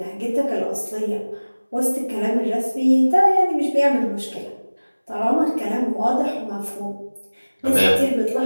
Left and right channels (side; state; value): both; inverted; correlation -1.00